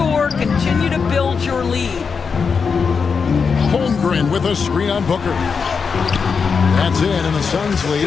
continue to build your lead. Holmgren with a screen on Booker. That's it, and the Suns'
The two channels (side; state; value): right; quieter; 5.6 dB